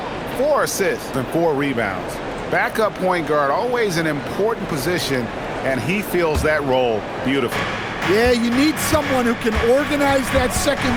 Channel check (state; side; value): identical; both; correlation 1.00